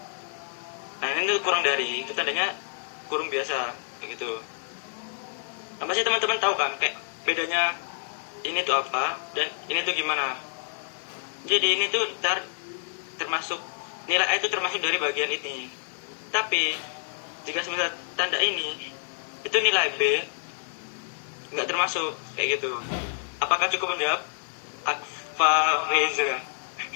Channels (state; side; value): silent; right; digital silence